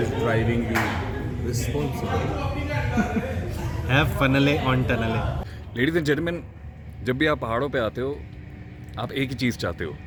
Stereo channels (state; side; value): identical; both; correlation 1.00